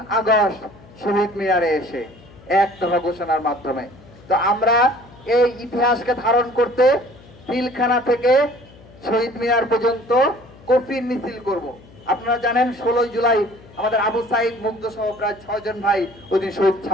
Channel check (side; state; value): left; noise; hum, 23 dB below the sound